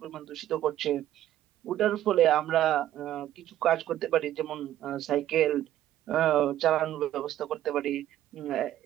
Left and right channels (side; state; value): left; quieter; 12.6 dB